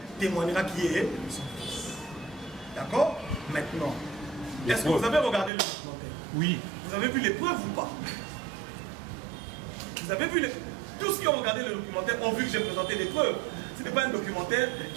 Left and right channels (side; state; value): left; drops out; at 5.5 s